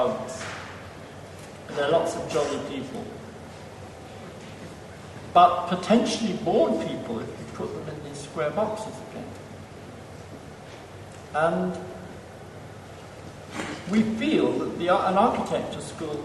And there are lots of jolly people. But potentially bored people if you put them in these square boxes again. And we feel that an architecture school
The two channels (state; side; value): identical; both; correlation 1.00